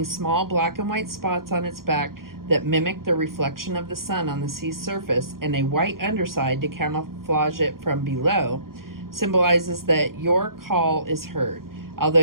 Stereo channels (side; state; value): left; late; 0.92 ms